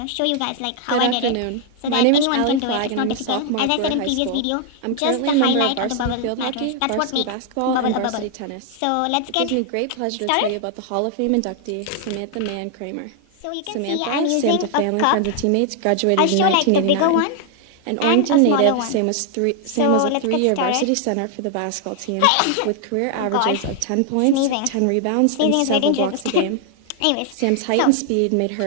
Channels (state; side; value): different; both; correlation 0.00